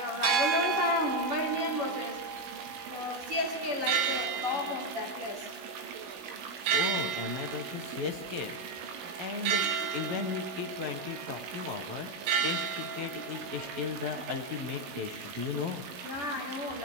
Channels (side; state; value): left; late; 16 ms